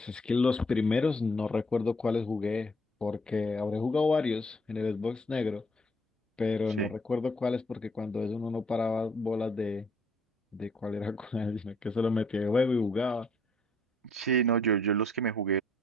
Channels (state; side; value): normal; both; correlation 0.65